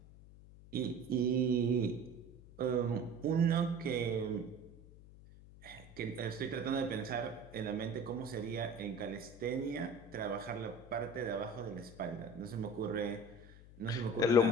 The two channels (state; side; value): noise; left; hum, 19 dB below the sound